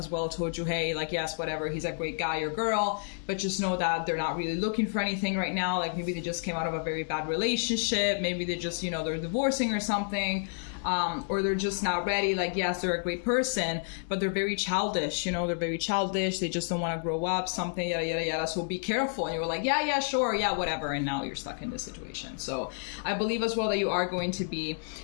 well told you, hey, like, yes, whatever, he's a great guy or girl, but just know that they're not really looking for anything right now. Like, maybe they just came out of a very bad relationship. Maybe they just, you know, they're divorcing or something. Or they're just not ready. Like, yes, they're a great person, but they're very childish, you know, they're very childish. They just don't want to grow up, something, yada, yada, yada. So be careful. And you were like, yeah, sure. Yeah, whatever. And now you're stuck in this situation. So I believe as well that you are going to be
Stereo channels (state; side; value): silent; right; digital silence